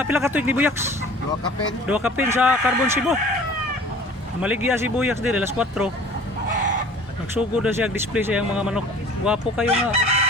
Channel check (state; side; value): normal; both; correlation 0.46